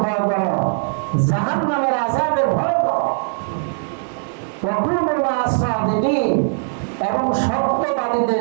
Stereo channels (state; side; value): silent; left; 59 dB below the other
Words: ভয় করো, জাহান্নামের আযাবের ভয় করো। ওয়া কুনু মা'আস সাদিকিন, এবং